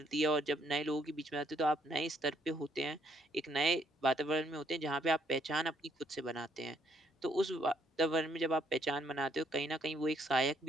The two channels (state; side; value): normal; both; correlation 0.70